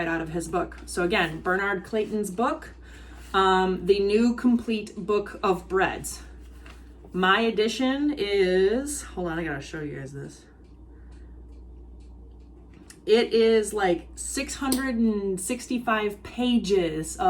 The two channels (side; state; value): both; identical; correlation 1.00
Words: out of his book. So again, Bernard Clayton's book, the new complete book of breads. My edition is, hold on, I gotta show you guys this. It is like 665 pages